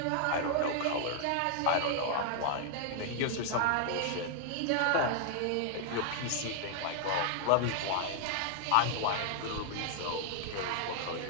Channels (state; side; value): different; both; correlation 0.00